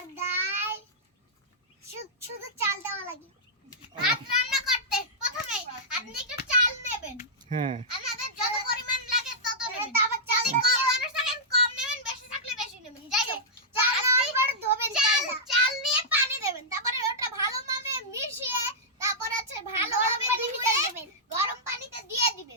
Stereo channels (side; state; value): both; normal; correlation -0.11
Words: ডাল, শুধু চাল দেওয়া লাগে। ভাত রান্না করতে প্রথমে আপনি একটু চাল নেবেন। হ্যাঁ, আপনাদের যত পরিমাণ লাগে তত নেবেন। তারপর চাল কম মানুষ থাকেন কম নেবেন, বেশি থাকলে বেশি নেবেন। যাই হোক, চাল নেওয়ার পর ধোবেন, চাল নিয়ে পানি দেবেন। তারপরে ওটা ভালোভাবে মিশিয়ে তারপর আছে ভালোভাবে ধুয়ে দেবেন, গরম পানিতে দিয়ে